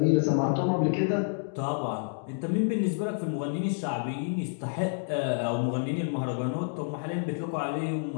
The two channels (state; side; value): silent; right; digital silence